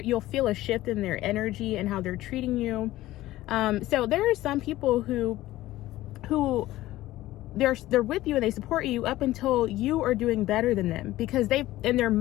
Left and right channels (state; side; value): quieter; right; 16.1 dB